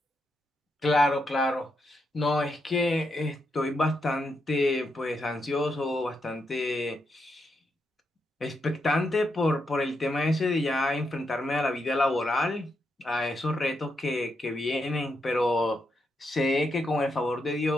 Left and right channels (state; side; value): normal; both; correlation 0.82